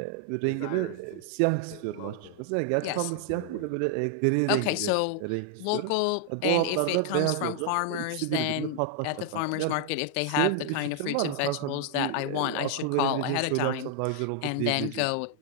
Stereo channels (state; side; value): different; both; correlation 0.00